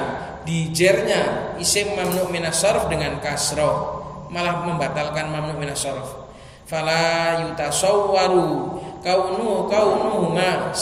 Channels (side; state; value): both; identical; correlation 1.00